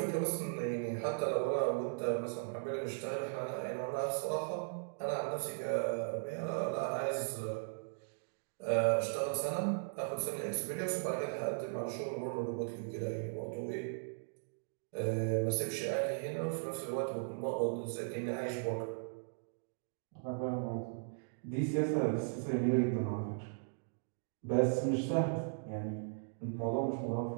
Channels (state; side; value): silent; left; digital silence